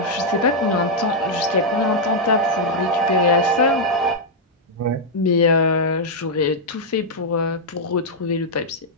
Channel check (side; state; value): both; normal; correlation -0.04